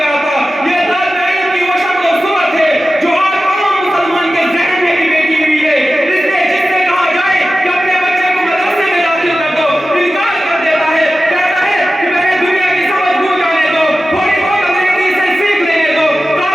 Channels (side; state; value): both; normal; correlation 0.94